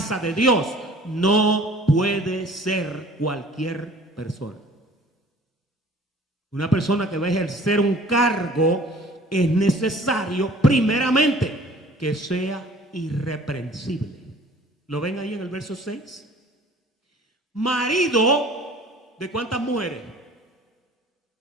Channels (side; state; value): both; normal; correlation 0.50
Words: de Dios no puede ser cualquier persona. Una persona que va a ejercer un cargo es necesario primeramente que sea irreprensible. ¿Lo ven ahí en el verso 6? Marido de ¿cuántas mujeres?